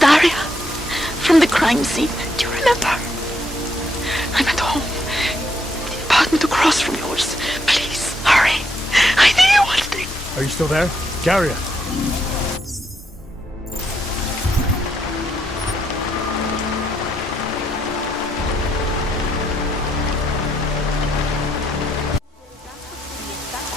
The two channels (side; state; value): both; normal; correlation 0.76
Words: From the crime scene. Do you remember? I'm at home. The apartment across from yours. Please, hurry. I need you one thing. Are you still there? Daria.